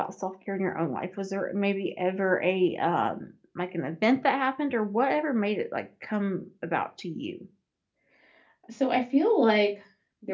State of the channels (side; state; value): both; identical; correlation 1.00